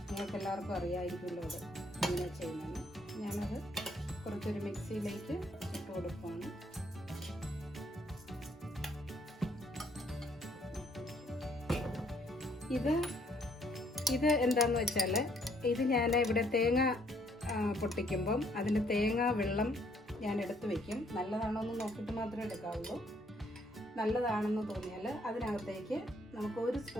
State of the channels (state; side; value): normal; both; correlation 0.66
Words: നിങ്ങൾക്ക് എല്ലാവർക്കും അറിയാമായിരിക്കുമല്ലോ അത് എങ്ങനെ ചെയ്യുന്നതെന്ന്. ഞാനത് കുറച്ചൊരു മിക്സിയിലേക്ക് ഇട്ട് കൊടുക്കുകയാണ്. ഇത് എന്താണെന്ന് വെച്ചാൽ, ഇത് ഞാൻ ഇവിടെ തേങ്ങ പൊട്ടിക്കുമ്പം അതിൻ്റെ തേങ്ങ വെള്ളം ഞാൻ എടുത്ത് വയ്ക്കും. നല്ലതാണോ എന്ന് നോക്കിയിട്ട് മാത്രമേ എടുക്കാവുള്ളൂ. നല്ലതാണെന്ന് തോന്നിയാൽ അതിനകത്തേക്ക് നമുക്ക് 1